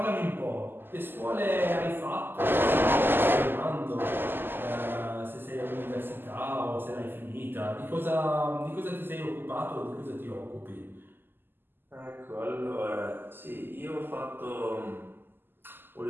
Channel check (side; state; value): left; late; 0.097 ms